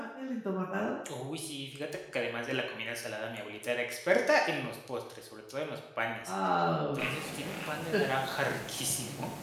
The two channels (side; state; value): both; identical; correlation 1.00